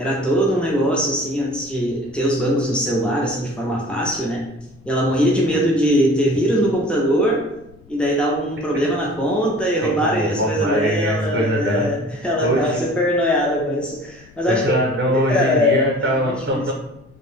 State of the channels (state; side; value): noise; left; rumble, 26 dB below the sound